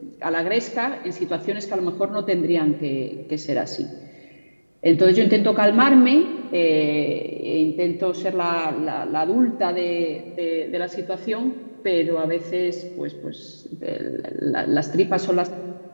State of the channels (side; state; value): both; inverted; correlation -1.00